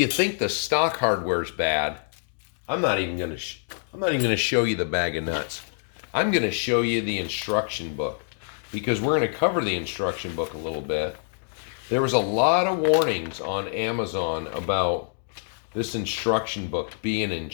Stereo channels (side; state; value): right; silent; digital silence